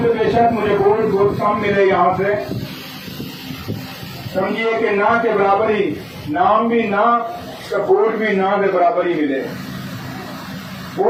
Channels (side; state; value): both; identical; correlation 1.00